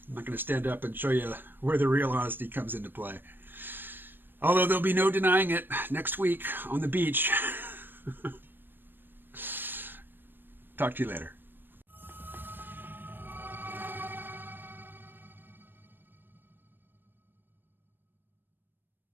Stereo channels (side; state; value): left; late; 0.095 ms